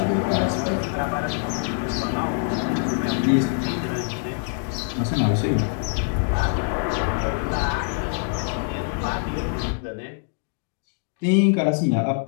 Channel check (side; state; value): right; silent; 62 dB below the other